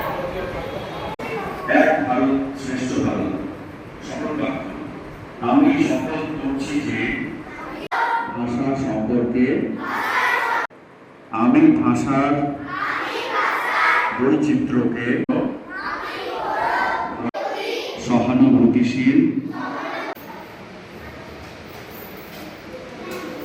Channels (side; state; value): both; identical; correlation 1.00